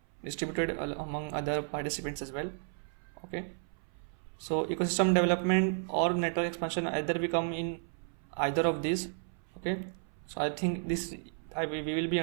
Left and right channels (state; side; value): silent; left; 56 dB below the other